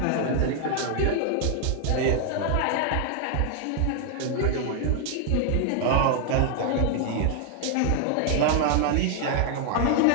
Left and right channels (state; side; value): different; both; correlation 0.00